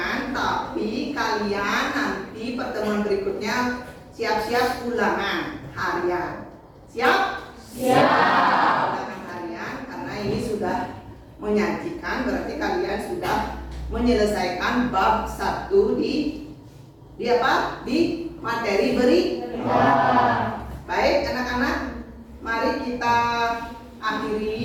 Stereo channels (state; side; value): identical; both; correlation 1.00